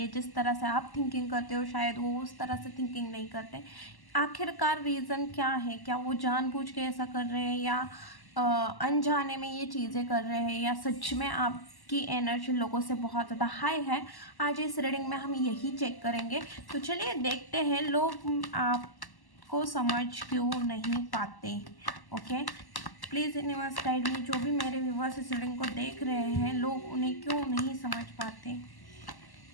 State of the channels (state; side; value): late; right; 1.1 ms